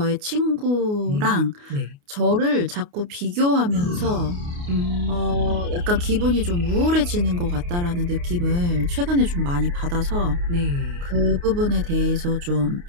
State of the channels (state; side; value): late; left; 29 ms